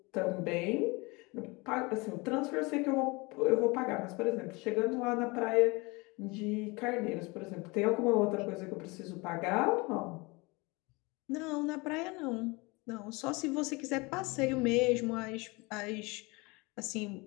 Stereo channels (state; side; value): quieter; right; 25.8 dB